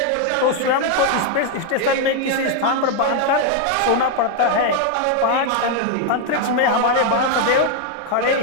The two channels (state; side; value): different; both; correlation 0.01